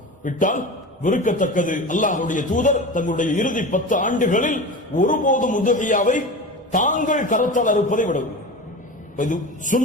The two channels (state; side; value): normal; both; correlation 0.29